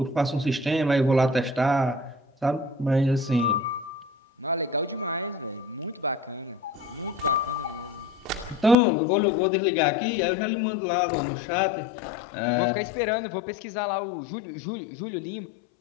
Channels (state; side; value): drops out; right; at 8.8 s